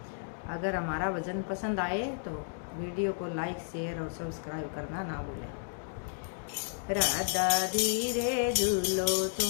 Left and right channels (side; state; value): right; silent; digital silence